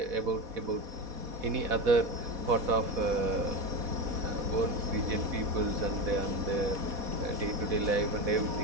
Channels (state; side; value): late; left; 4.1 ms